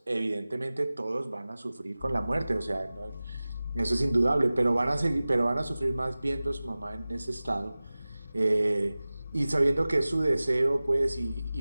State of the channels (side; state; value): both; inverted; correlation -0.97